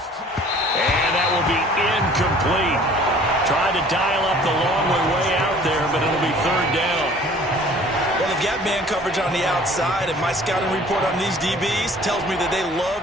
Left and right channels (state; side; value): normal; both; correlation 0.51